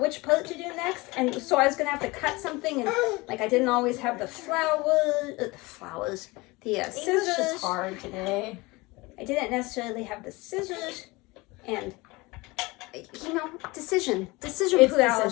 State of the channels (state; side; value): quieter; right; 23.2 dB